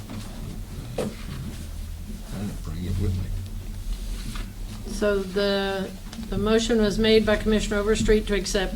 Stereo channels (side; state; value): both; identical; correlation 1.00